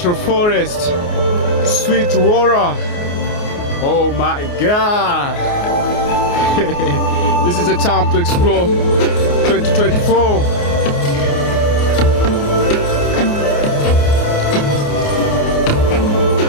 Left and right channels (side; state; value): right; late; 28 ms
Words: forest, sweet water. Oh my God! This is the time to explore 2024.